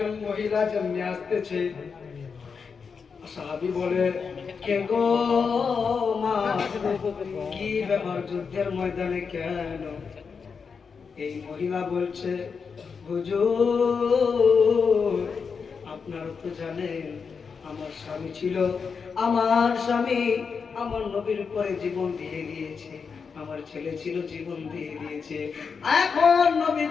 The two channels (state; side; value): quieter; right; 5.7 dB